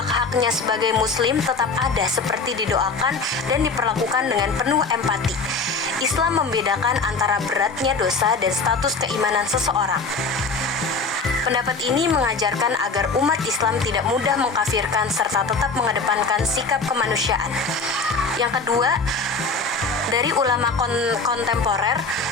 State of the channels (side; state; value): right; quieter; 4.0 dB